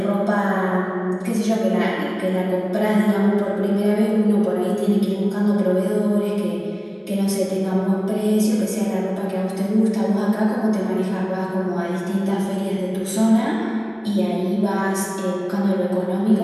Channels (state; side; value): identical; both; correlation 1.00